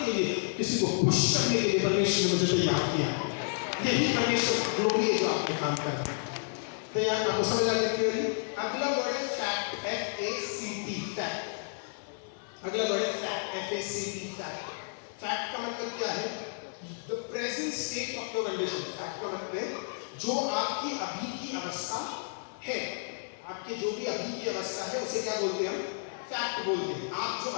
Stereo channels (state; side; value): silent; right; digital silence